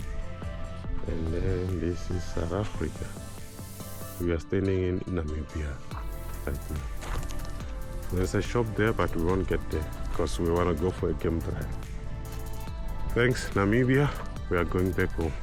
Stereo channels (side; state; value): both; identical; correlation 1.00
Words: and then this is South Africa. We are standing in Namibia right now. There's a shop there, but we won't get there because we want to go for a game drive. Thanks, Namibia. We are going back home.